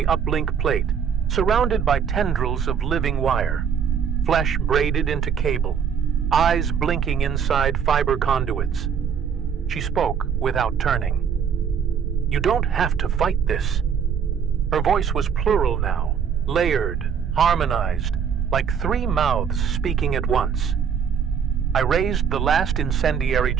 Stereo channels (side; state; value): left; quieter; 7.3 dB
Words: uplink plate, surrounded by tendrils of living wire, flesh braided into cable, eyes blinking inside fiber conduits. She spoke without turning. "You don't have to fight this." Her voice was plural now, layered, harmonized, like 3 mouths speaking at once. I raised the last incendiary